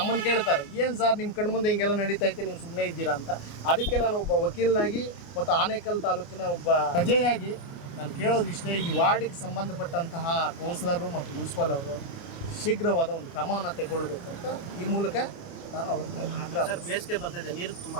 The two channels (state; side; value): late; right; 29 ms